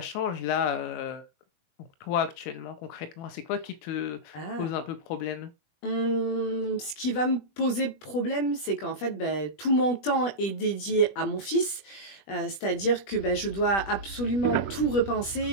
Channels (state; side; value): late; right; 20 ms